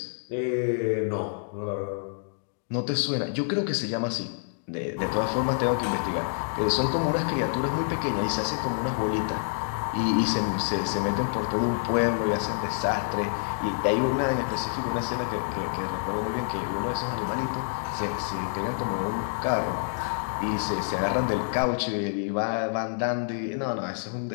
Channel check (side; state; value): right; silent; digital silence